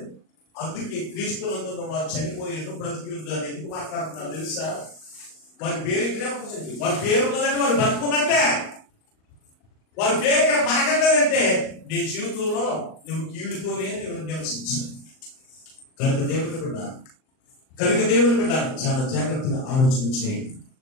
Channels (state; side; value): late; right; 38 ms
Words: అందుకే క్రీస్తులందున్న వారు చనిపోయి ఎందుకు బ్రతికిందని ఎందుకు మాట్లాడుతున్నారు తెలుసా? వారి పేరు ఇక్కడే ఉంటుంది. వారి పేరు ఉన్నదంటే వారు బతుకున్నట్టే. వారి పేరు ఇక్కడ పలకట్లేదంటే నీ జీవితంలో నువ్వు కీడుతోనే నువ్వు నివసించు. కనుక దేవుని బిడ్డ చాలా జాగ్రత్తగా ఆలోచన చేయండి.